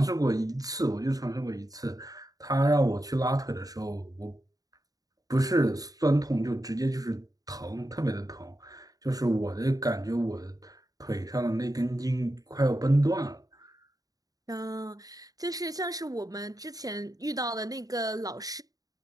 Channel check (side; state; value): left; late; 0.18 ms